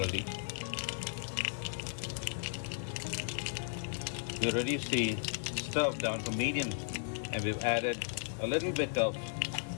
We reduce the stove down to medium and we've added a little bit of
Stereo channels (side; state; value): right; silent; 54 dB below the other